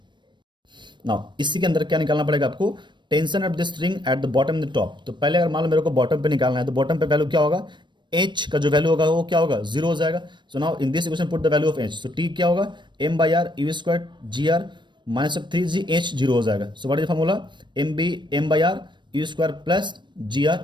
Now इसी के अंदर क्या निकालना पड़ेगा आपको, tension of the string at the bottom the top. तो पहले अगर मान लो मेरे को बॉटम पे निकालना है तो बॉटम पे वैल्यू क्या होगा, h का जो वैल्यू होगा वो क्या होगा, 0 हो जाएगा। So now in this equation put the value of h। So t क्या होगा, m by r u square g are minus of 3gh, 0 हो जाएगा। So what is the formula, m by r u square plus ji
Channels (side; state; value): left; late; 0.22 ms